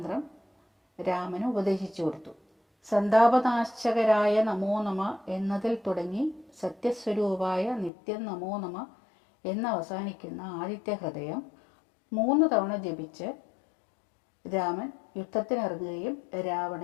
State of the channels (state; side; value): drops out; right; at 7.9 s